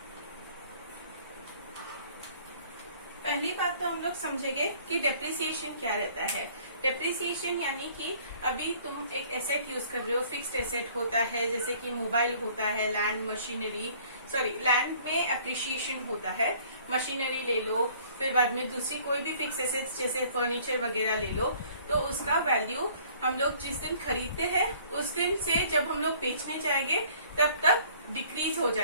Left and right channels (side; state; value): both; inverted; correlation -0.56